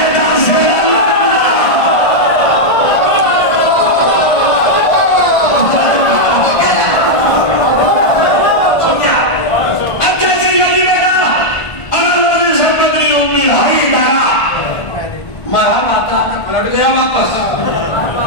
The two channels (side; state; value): right; late; 1.5 ms